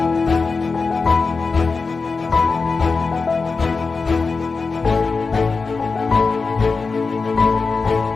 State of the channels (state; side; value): quieter; right; 4.4 dB